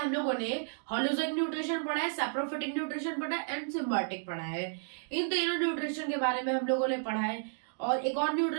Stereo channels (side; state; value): left; silent; digital silence